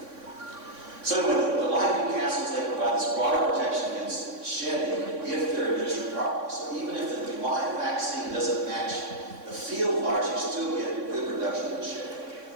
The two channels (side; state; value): left; late; 3.6 ms